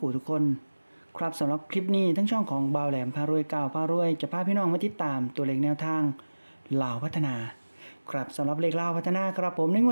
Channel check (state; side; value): inverted; both; correlation -1.00